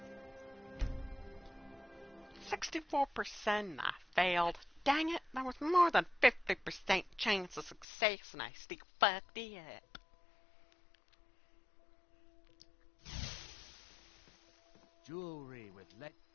64% I failed. Dang it, that was more than 50% chance of success and I still fucked it up. Jewelry with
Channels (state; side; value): drops out; right; at 7.9 s